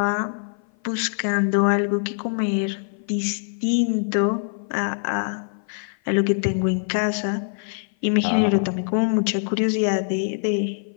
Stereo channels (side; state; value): right; silent; 55 dB below the other